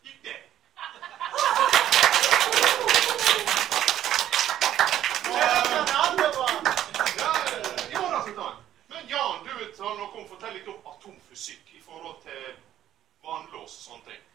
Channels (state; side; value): quieter; left; 11.8 dB